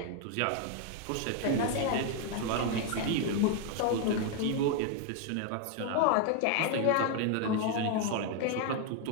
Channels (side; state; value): both; different; correlation 0.01